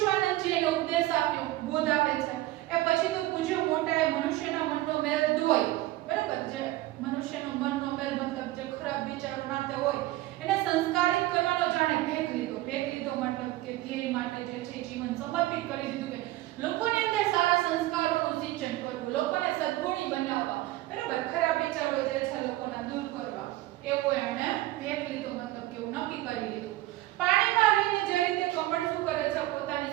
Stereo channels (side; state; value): left; quieter; 17.0 dB